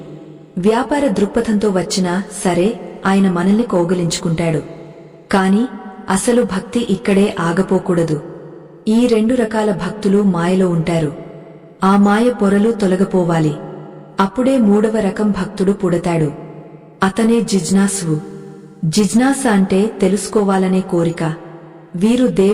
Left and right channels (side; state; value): both; identical; correlation 1.00